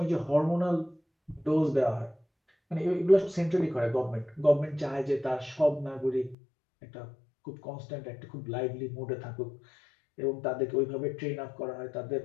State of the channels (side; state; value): right; drops out; at 6.4 s